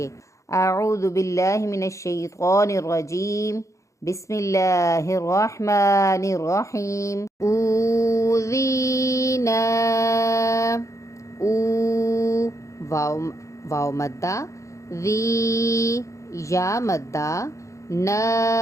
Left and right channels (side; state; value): right; late; 0.15 ms